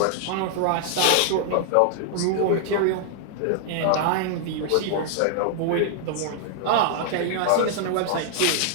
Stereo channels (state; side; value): different; both; correlation -0.01